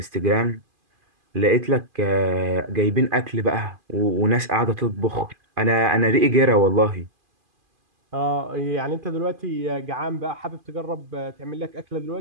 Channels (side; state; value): left; late; 2.5 ms